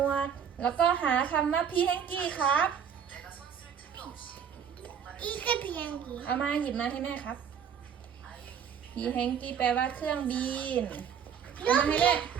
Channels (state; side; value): quieter; left; 7.7 dB